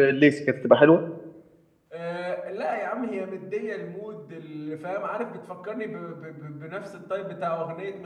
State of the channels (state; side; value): identical; both; correlation 1.00